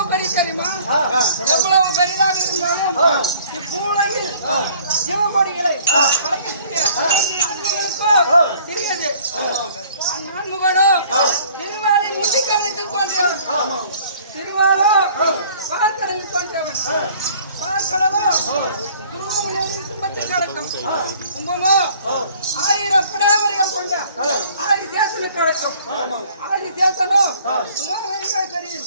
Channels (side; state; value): both; inverted; correlation -0.55